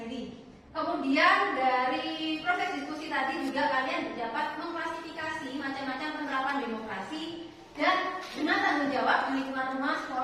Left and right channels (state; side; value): identical; both; correlation 1.00